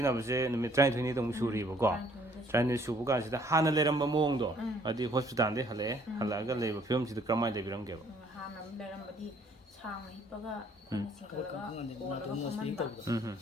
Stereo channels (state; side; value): normal; both; correlation 0.61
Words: ꯅꯨꯃꯤꯠ 12ꯅꯤꯗ ꯑꯃꯨꯛ ꯁꯨꯔꯤꯕꯀꯣ 12ꯅꯤ ꯁꯨꯕ ꯀꯥꯟꯁꯤꯗ ꯍꯥꯟꯅ ꯂꯩꯔꯝꯕ ꯃꯑꯣꯡꯗꯣ ꯍꯥꯏꯗꯤ ꯍꯣꯁꯄꯤꯇꯥꯜꯗꯩ ꯍꯜꯂꯛꯑꯒ ꯂꯩꯕ ꯐꯤꯕꯝꯁꯤꯗ ꯀꯔꯝꯍꯥꯏꯅ ꯂꯩꯕꯤꯔꯝꯒꯦꯕ ꯍꯥꯟꯅ ꯂꯩꯔꯝꯕꯗꯤ ꯁꯥꯡꯅ ꯍꯤꯞꯄꯒ ꯑꯩꯈꯣꯏꯅ ꯆꯤꯡꯈꯠꯂꯒ ꯀꯣꯜꯂꯒ ꯐꯝꯍꯟꯕ